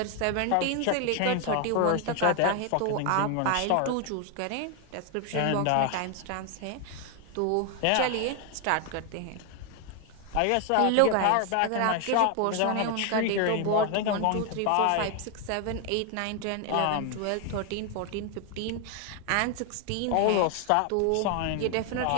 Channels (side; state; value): both; different; correlation 0.01